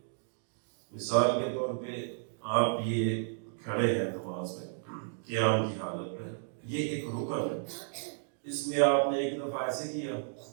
مثال کے طور پہ آپ یہ کھڑے ہیں نماز میں قیام کی حالت میں، یہ ایک رکن ہے، اس میں آپ نے ایک دفعہ ایسے کیا،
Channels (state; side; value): silent; left; digital silence